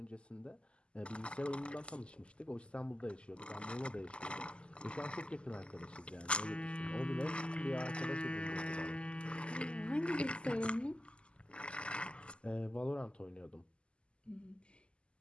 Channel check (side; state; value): right; late; 0.053 ms